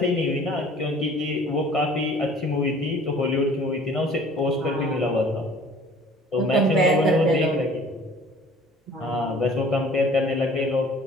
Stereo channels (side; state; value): both; normal; correlation 0.51